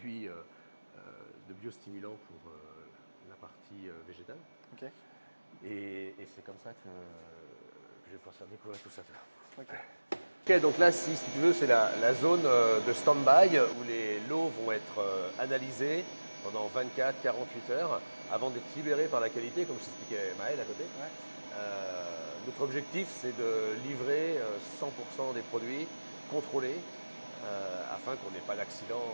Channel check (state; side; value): inverted; both; correlation -1.00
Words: de biostimulants pour la partie végétale. Okay. Et c'est comme ça que je vais pouvoir faire découvrir tout ça. Ok, donc là, si tu veux, c'est la zone de stand-by où les lots vont être analysés pendant 24-48 heures avant d'être libérés par la qualité, comme je t'expliquais Maël à côté. Ouais. Notre objectif, c'est de livrer 100% des produits contrôlés afin qu'on n'ait pas d'accident.